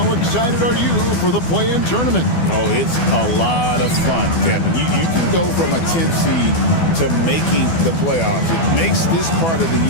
excited are you for the play-in tournament? Oh, it's a lot of fun, Kevin. You can go from a 10th seed to making the playoffs. It makes this part of the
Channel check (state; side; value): late; right; 12 ms